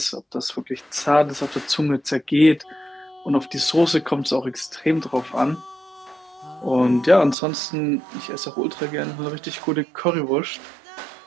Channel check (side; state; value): left; drops out; at 7.4 s